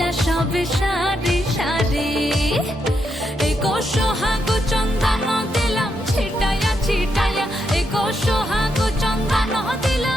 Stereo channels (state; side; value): normal; both; correlation 0.81